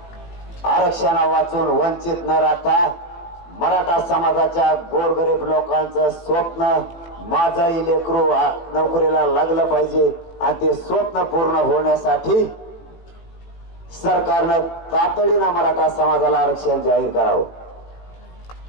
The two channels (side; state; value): right; late; 18 ms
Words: आरक्षणा वाचून वंचित न राहता मराठा समाजाच्या गोरगरीब लोकांचं स्वप्न, माझाही लेकरू नोकरीला लागलं पाहिजे, आणि ते स्वप्न पूर्ण होण्यासाठी सरकारनं तातडीनं मराठा समाजाला आरक्षण जाहीर करावं.